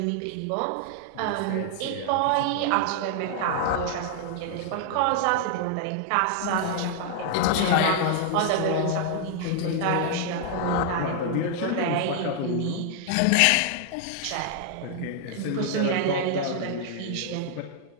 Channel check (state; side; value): different; both; correlation -0.01